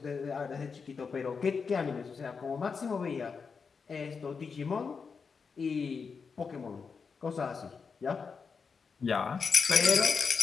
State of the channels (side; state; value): right; quieter; 5.4 dB